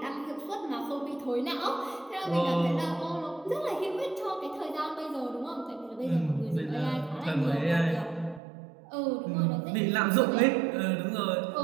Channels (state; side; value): drops out; left; at 8.4 s